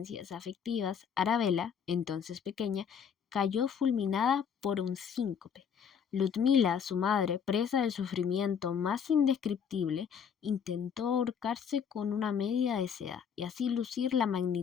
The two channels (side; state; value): right; quieter; 7.3 dB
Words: afectivas, Arabella, entonces pequeña, cayó fulminada por un síncope. Ludmila, su madre, presa del sufrimiento más indescriptible, intentó ahorcarse con una media de seda y así lucir la